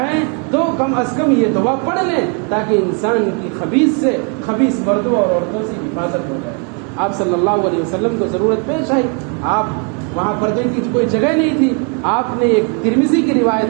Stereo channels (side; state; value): left; quieter; 37.7 dB